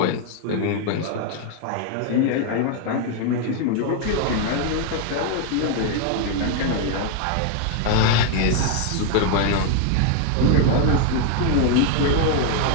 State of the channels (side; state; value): both; different; correlation 0.00